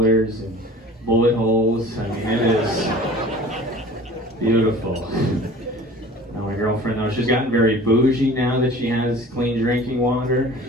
and bullet holes. I mean, it is beautiful. My girlfriend, though, she's gotten very bougie now that she has clean drinking water.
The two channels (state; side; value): normal; both; correlation 0.44